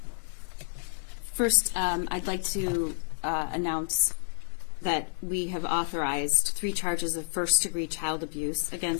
First, I'd like to announce that we have authorized 3 charges of first-degree child abuse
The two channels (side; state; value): right; silent; 58 dB below the other